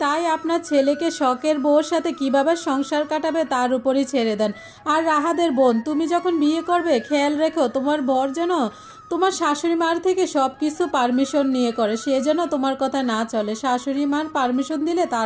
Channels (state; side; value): identical; both; correlation 1.00